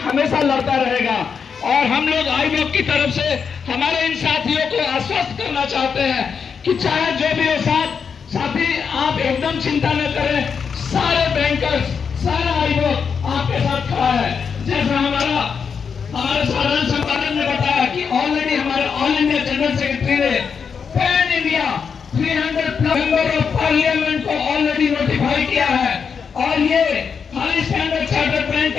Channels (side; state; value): right; quieter; 6.3 dB